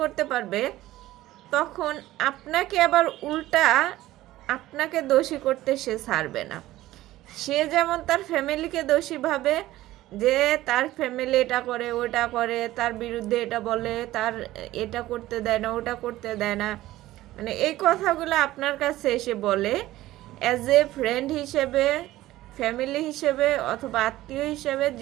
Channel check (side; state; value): left; quieter; 15.9 dB